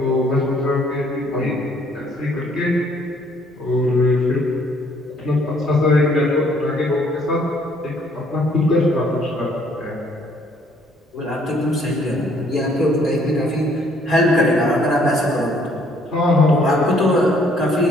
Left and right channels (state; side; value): normal; both; correlation 0.64